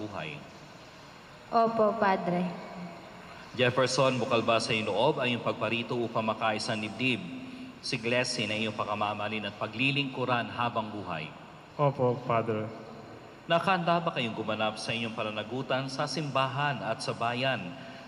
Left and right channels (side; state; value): both; identical; correlation 1.00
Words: Opo, Padre. Jefferson, bukal ba sa iyong loob ang iyong pagparito upang makaisang dibdib si Glassy na iyong pakamamalin at paglilingkuran habang buhay? Opo, Padre. Nakahanda ba kayong gumanap sa inyong pananagutan sa simbahan at sa bayan